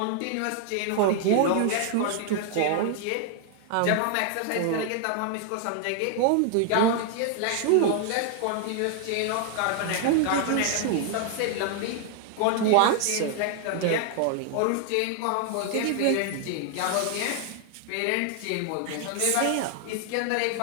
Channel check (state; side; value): different; both; correlation 0.00